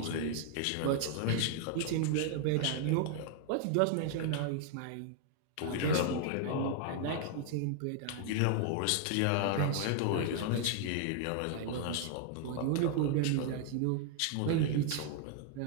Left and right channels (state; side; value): different; both; correlation 0.00